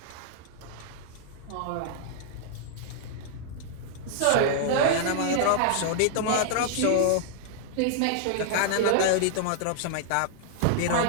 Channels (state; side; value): different; both; correlation -0.01